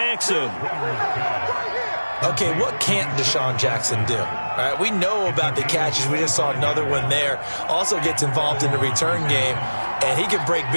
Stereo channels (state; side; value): inverted; both; correlation -1.00